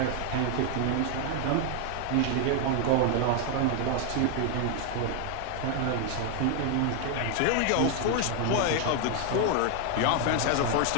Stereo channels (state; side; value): different; both; correlation 0.00